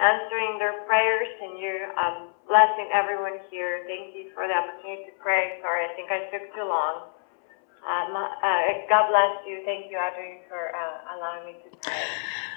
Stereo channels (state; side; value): silent; right; 61 dB below the other